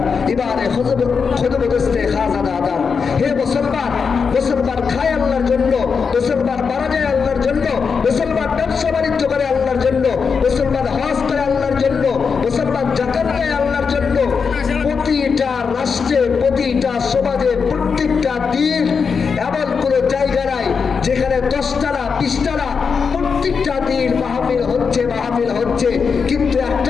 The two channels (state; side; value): quieter; right; 5.7 dB